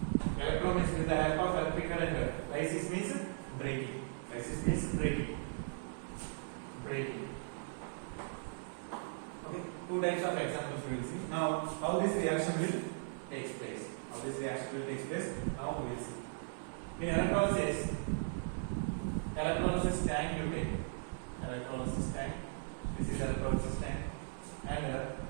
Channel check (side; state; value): left; silent; digital silence